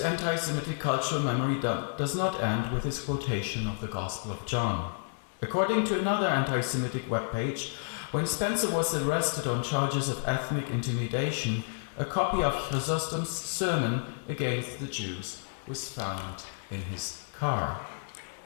cultural memory does not end with his quotation of the Gospel of John. According to another anti-Semitic webpage, when Spencer was arrested on charges of ethnic intimidation, a copy of Chrysostom's sermon against the Jews was found in his car.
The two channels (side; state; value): right; silent; 57 dB below the other